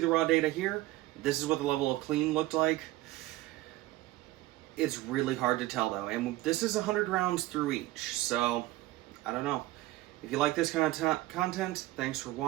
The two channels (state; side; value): quieter; left; 17.9 dB